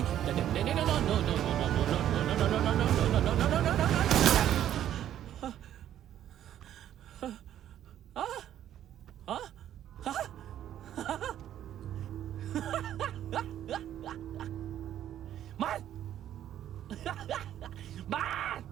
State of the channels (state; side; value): quieter; left; 11.2 dB